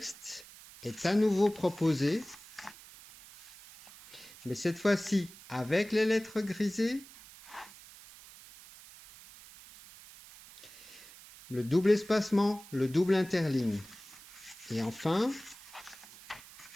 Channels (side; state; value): right; noise; hiss, 19 dB below the sound